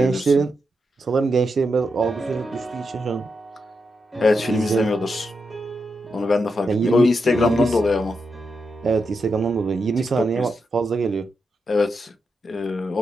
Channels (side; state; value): both; normal; correlation 0.85